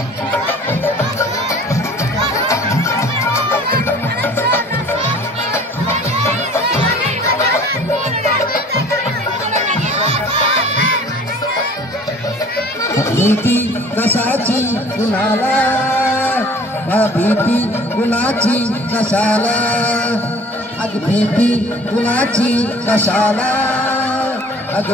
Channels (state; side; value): normal; both; correlation 0.49